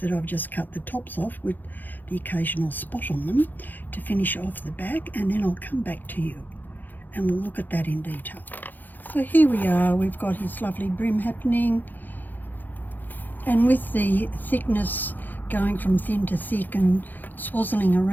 I've just cut the tops off with the occasional spot on them to finish off the back, and then I'll come back to you and we'll look at that in detail. So here we are, we've got his lovely brim happening, and with the thickness going from thin to thick and swazzling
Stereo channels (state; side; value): late; right; 0.087 ms